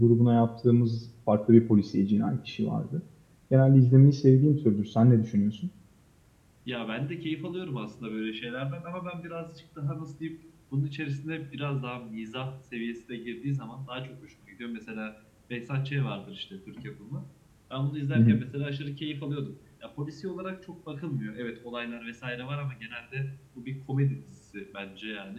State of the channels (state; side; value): identical; both; correlation 1.00